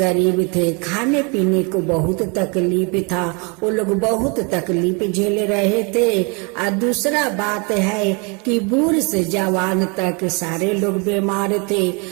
थे। खाने पीने को बहुत तकलीफ था। वो लोग बहुत तकलीफ झेल रहे थे। और दूसरा बात है कि बूढ़ से जवान तक सारे लोग बीमार थे।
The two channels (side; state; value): left; quieter; 32.3 dB